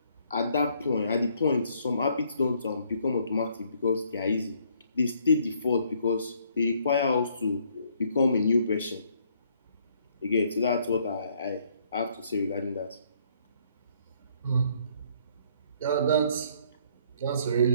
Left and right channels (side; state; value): both; inverted; correlation -0.66